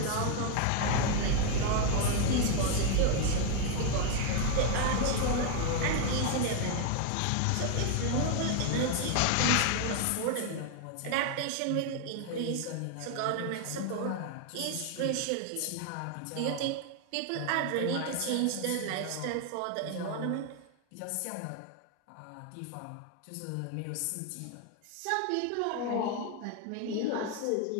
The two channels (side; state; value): both; different; correlation 0.00